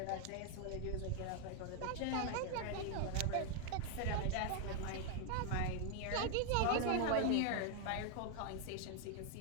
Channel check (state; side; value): different; both; correlation 0.00